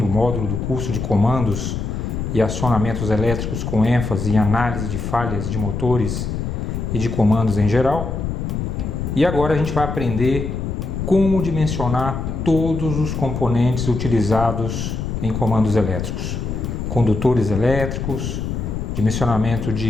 módulo do curso de comandos e acionamentos elétricos com ênfase em análise de falhas de motores e de comandos em geral. E agora a gente vai aprender como dimensionar todos os componentes utilizados em comandos elétricos, condutores elétricos, dimensionamento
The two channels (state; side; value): noise; left; rumble, 3 dB below the sound